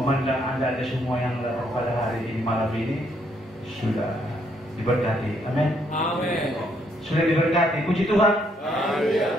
Anda semua yang datang pada hari ini malam ini sudah diberkati. Amin. Amin. Sudah diberkati. Puji Tuhan. Amin.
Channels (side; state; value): both; normal; correlation 0.71